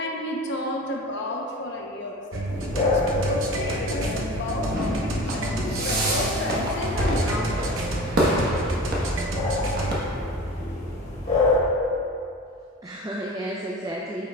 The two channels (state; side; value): normal; both; correlation 0.35